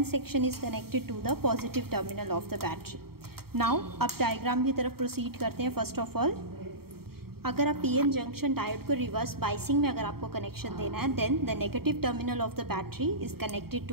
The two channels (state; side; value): late; left; 0.95 ms